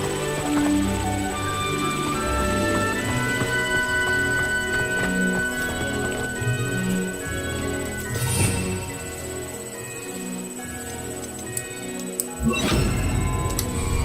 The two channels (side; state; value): both; identical; correlation 1.00